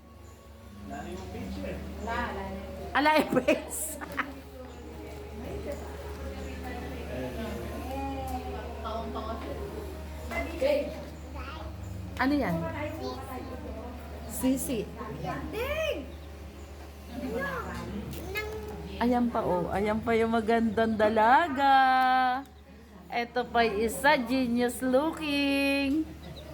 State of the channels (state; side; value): identical; both; correlation 1.00